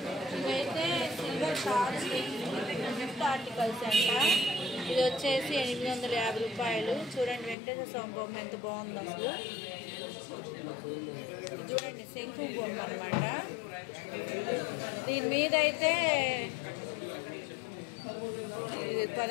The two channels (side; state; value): right; drops out; at 7.6 s